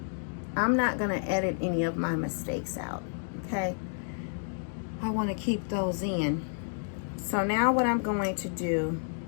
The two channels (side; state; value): right; silent; digital silence